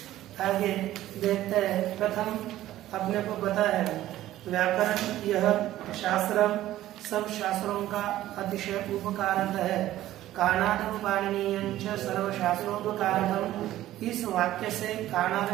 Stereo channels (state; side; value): quieter; left; 14.2 dB